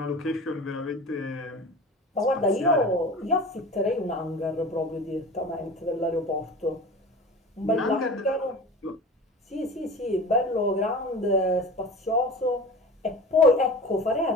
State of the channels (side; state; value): both; normal; correlation 0.35